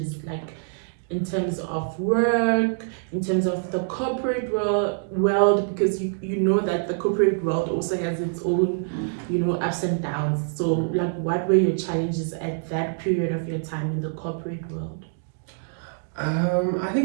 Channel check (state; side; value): silent; left; digital silence